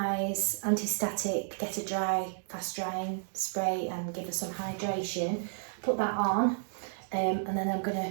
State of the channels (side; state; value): left; silent; digital silence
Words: anti-static, get a dry, fast drying spray and give her some hydration. Put that on, and then I'm going